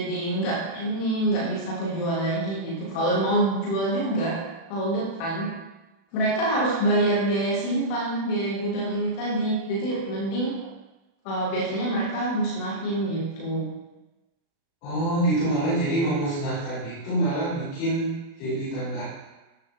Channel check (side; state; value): right; late; 36 ms